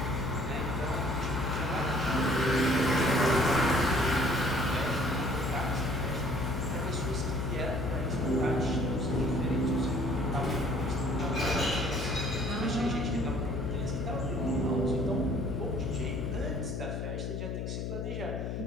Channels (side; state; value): left; noise; hum, 3 dB below the sound